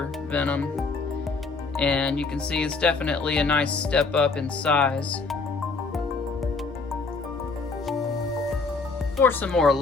Venom. And you can see it's definitely a nice step up in size. For some more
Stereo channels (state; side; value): quieter; right; 4.1 dB